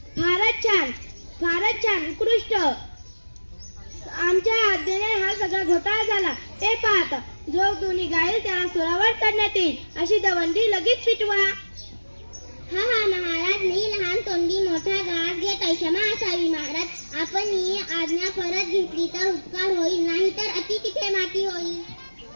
फारच छान उत्कृष्ट. आमच्या आज्ञेने हा सगळा घोटाळा झाला. ते पाहत जो दोन्ही गाईल त्याला सुरावर चढण्यात येईल अशी दवंडी लगेच पिटवा. हा महाराज मी लहान तोंडी मोठा घास घेत क्षमा असावी. महाराज आपण ही आज्ञा परत घेतली तर उपकार होईल नाही तर अति तिथे माती होईल.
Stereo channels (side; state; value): both; inverted; correlation -1.00